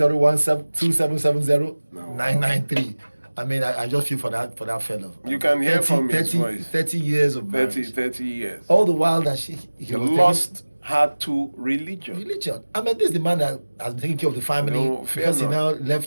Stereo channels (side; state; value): both; inverted; correlation -1.00